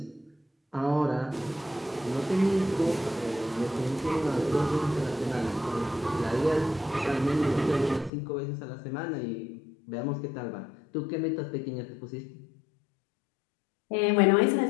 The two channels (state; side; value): drops out; right; at 8.1 s